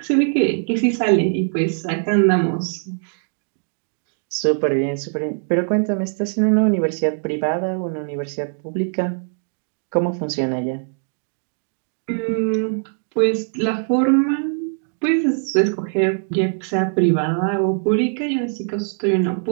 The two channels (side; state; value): left; silent; 59 dB below the other